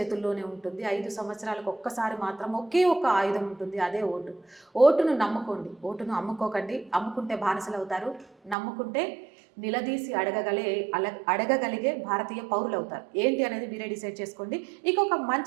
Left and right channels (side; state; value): left; drops out; at 8.6 s